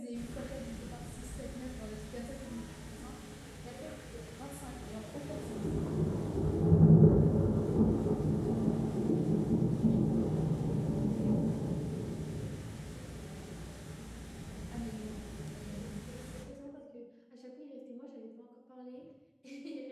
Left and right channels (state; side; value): identical; both; correlation 1.00